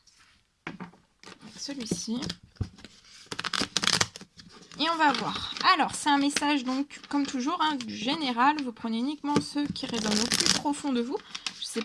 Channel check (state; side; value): identical; both; correlation 1.00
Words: avec celui-ci. Et on va voir. Alors, c'est un message, donc, comme toujours, du général. Vous prenez uniquement ceux qui résonnent au plus profond de vous. Je ne sais